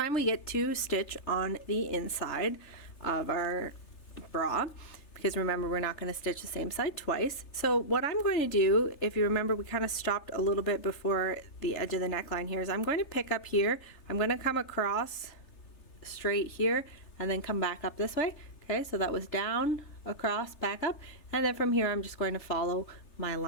we get to stitch on the inside of our bra, because remember, we're not going to stitch the same side twice. So what I'm going to do, if you remember, we kind of stopped a little bit before the edge of the neckline here, is I'm going to pick up here, I'm going to come across straight here and then come back up this way. Okay, so that was down, across, back up, and then from here I'm just going to follow my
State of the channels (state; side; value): late; right; 3.3 ms